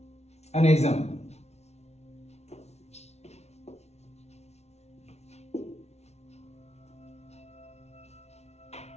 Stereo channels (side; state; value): right; late; 0.31 ms